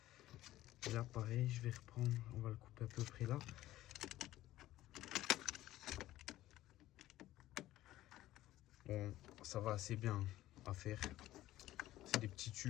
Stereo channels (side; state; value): right; quieter; 15.1 dB